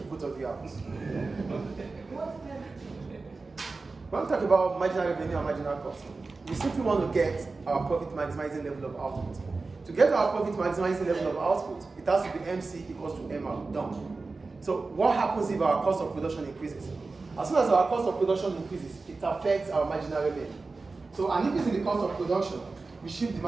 both of you out. When we talk about marginal revenue and marginal cost, we simply want to get our profit maximizing level of output. To get our profit maximizing level of output, it has to be MC equals to MR, done. So what happens if our cost of production increases? As soon as our cost of production increases, it affects our marginal revenue. So an increase in the cost of production, we shift the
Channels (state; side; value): quieter; left; 3.8 dB